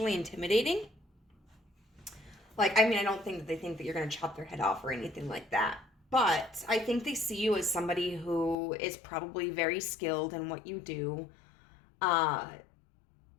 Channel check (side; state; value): right; drops out; at 8.6 s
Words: intimidating. Like, I don't think that they think that you're going to chop their head off or anything like that, but I think they see you as somebody who is probably very skilled in what you do,